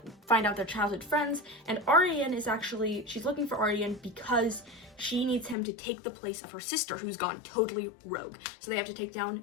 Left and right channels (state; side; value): drops out; right; at 5.6 s